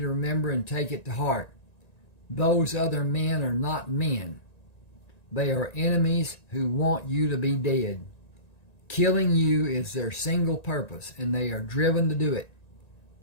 to remember and take it to heart. Those other men are not men. They are enemies who want you to be dead. Killing you is their single purpose, and they are driven to do it.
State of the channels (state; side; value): late; right; 1.9 ms